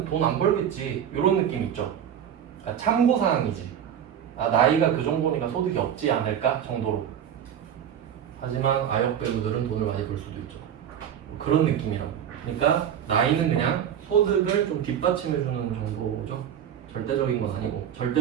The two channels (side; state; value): left; quieter; 9.3 dB